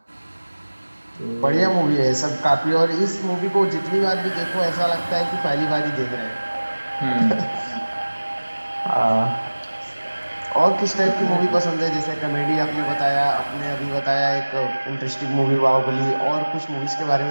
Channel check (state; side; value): inverted; both; correlation -1.00